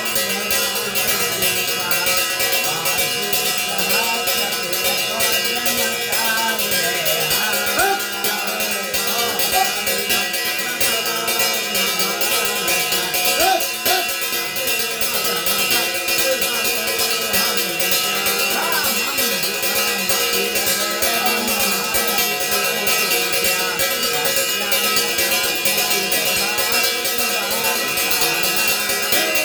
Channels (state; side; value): identical; both; correlation 1.00